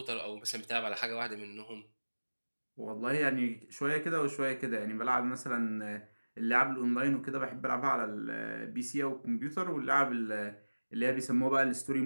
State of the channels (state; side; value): inverted; both; correlation -1.00